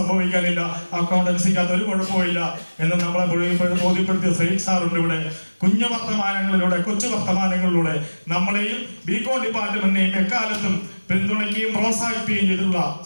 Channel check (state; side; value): inverted; both; correlation -1.00